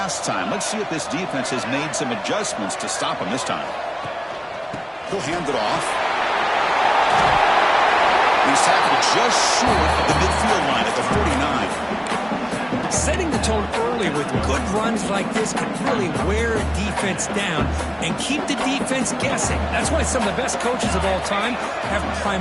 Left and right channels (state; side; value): identical; both; correlation 1.00